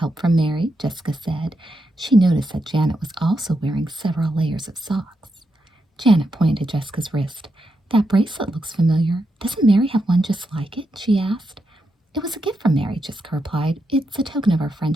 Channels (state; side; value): normal; both; correlation 0.84